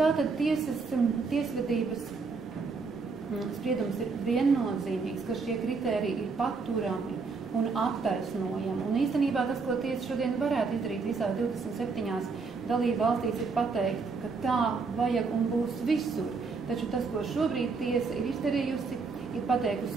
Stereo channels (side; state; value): left; quieter; 4.6 dB